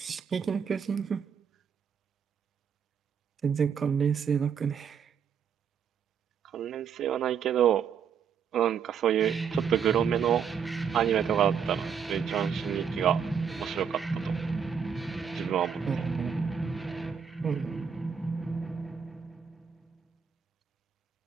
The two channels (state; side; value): quieter; left; 7.1 dB